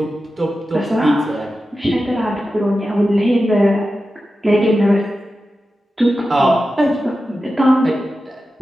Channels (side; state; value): both; normal; correlation 0.92